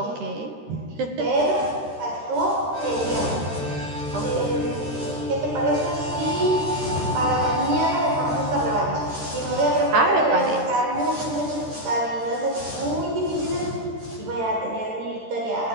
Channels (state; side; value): late; left; 13 ms